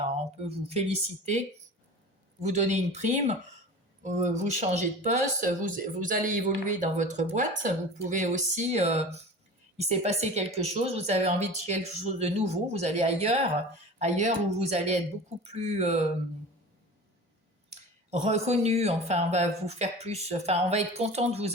on peut vous féliciter, vous donner une prime, vous changez de poste, vous allez évoluer dans votre boîte. Vous pouvez aussi il s'est passé quelque chose, vous avez envie de quelque chose de nouveau, vous allez ailleurs où vous allez être beaucoup plus reconnu, enfin on va vous faire plus, enfin on va être content de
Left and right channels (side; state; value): both; normal; correlation 0.36